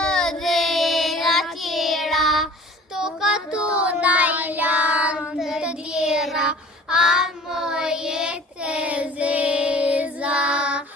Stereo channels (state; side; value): normal; both; correlation 0.47